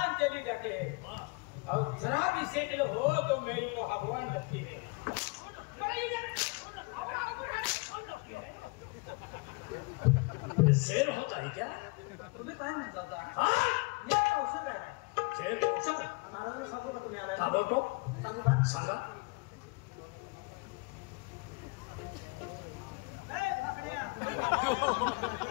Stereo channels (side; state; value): right; quieter; 28.6 dB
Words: चली जाती है और जरा भी सेटल हो तो मेरी को भगवान लगती है. शेर होता है क्या? तुम्ही काय म्हणता होता? हाँ? हे औषध आहे. शेर औषध? महाराज सांगू का तुम्ही आलाय? का बोलतो? सांगू का? सांगा. ए फाकड्या.